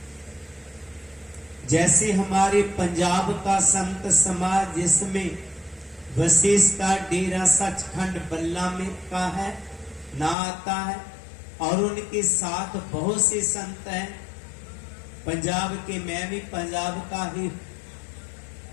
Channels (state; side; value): drops out; right; at 10.4 s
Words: जैसे हमारे पंजाब का संत समाज, जिसमें वशिष्ठ का डेरा सचखंड बल्ला में का है ना आता है, और उनके साथ बहुत से संत हैं पंजाब के। मैं भी पंजाब का ही।